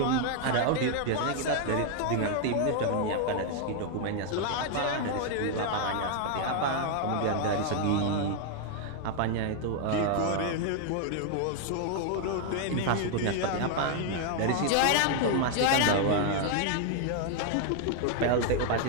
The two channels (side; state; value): both; different; correlation 0.00